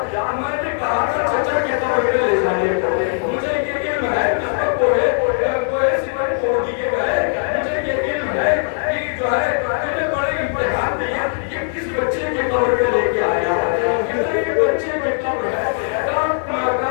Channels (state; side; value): silent; right; digital silence